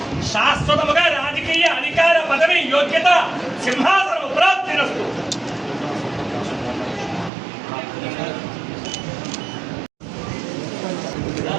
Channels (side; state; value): left; drops out; at 7.3 s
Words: శాశ్వతముగా రాజకీయ అధికార పదవి యోగ్యత సింహాసనం ప్రాప్తిరస్తు.